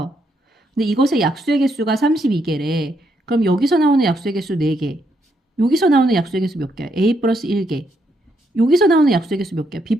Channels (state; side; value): normal; both; correlation 0.76